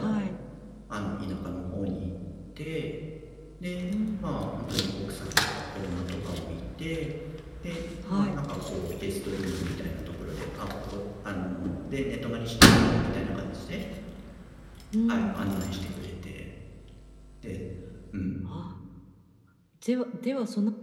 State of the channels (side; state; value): both; identical; correlation 1.00